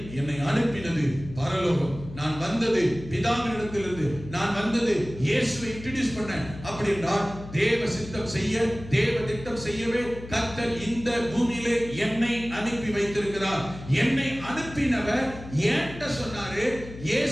என்னை அனுப்பினது பரலோகம். நான் வந்தது பிதாவினிடத்திலிருந்து, நான் வந்தது இயேசுவை இன்ட்ரோடியூஸ் பண்ண. அப்படி என்றால் தேவ சித்தம் செய்ய, தேவ திட்டம் செய்யவே கர்த்தர் இந்த பூமியிலே என்னை அனுப்பி வைத்திருக்கிறார். என்னை அனுப்பினவர் ஏன்ட்ட சொன்னாரு,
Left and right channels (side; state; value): left; noise; hum, 14 dB below the sound